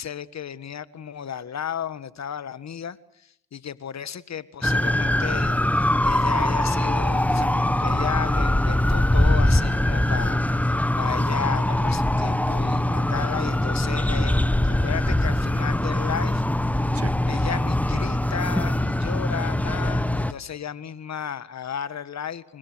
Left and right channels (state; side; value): normal; both; correlation 0.85